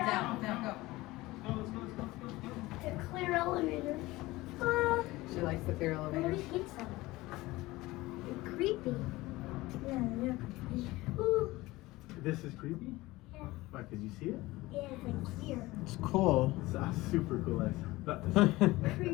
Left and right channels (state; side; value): quieter; right; 19.5 dB